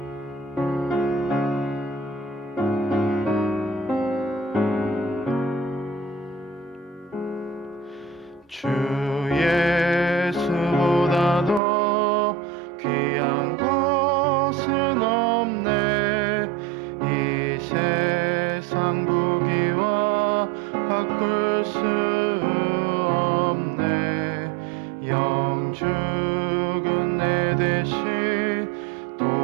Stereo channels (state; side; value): drops out; left; at 11.6 s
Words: 주 예수보다 더 귀한 것은 없네. 이 세상 부귀와 바꿀 수 없네. 영 죽은 내 대신